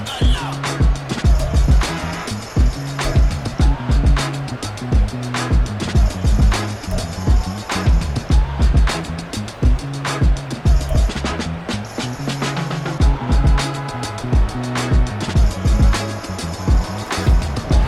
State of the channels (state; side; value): identical; both; correlation 1.00